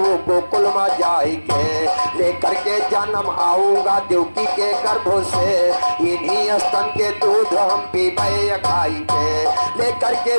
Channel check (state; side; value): inverted; both; correlation -1.00